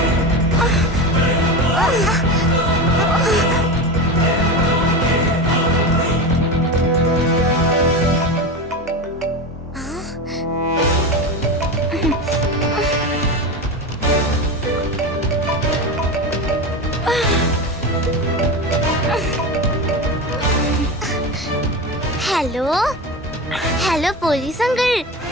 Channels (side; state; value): both; normal; correlation 0.23